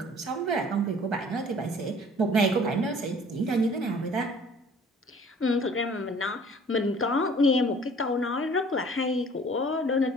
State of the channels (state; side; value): normal; both; correlation 0.51